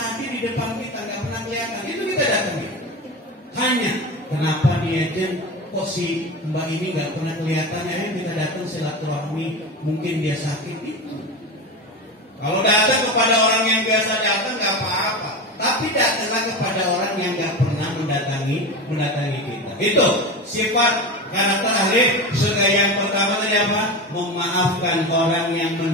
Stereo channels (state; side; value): normal; both; correlation 0.24